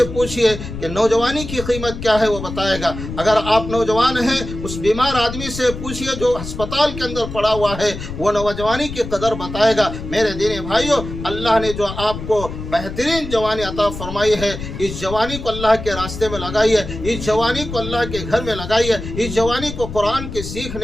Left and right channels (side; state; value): left; noise; rumble, 9 dB below the sound